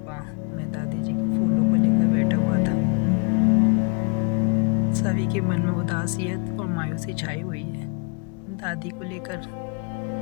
मैं दादी जी के फूलों को लेकर बैठा हुआ था। सभी के मन में उदासियत और मायूसी छाई हुई है दादी को लेकर,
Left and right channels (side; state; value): right; quieter; 34.5 dB